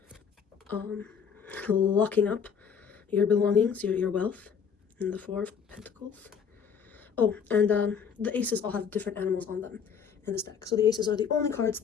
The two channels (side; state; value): right; quieter; 6.9 dB